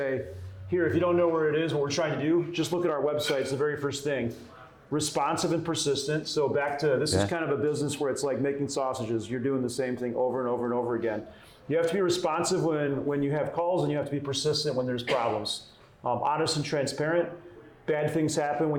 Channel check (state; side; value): identical; both; correlation 1.00